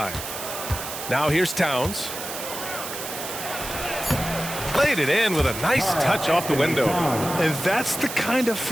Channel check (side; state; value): right; noise; hiss, 8 dB below the sound